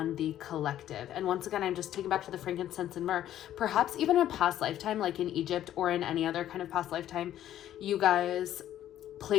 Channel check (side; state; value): right; quieter; 11.9 dB